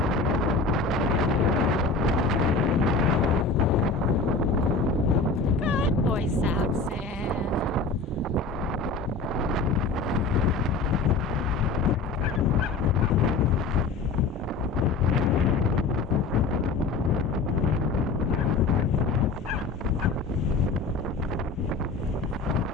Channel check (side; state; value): right; quieter; 4.1 dB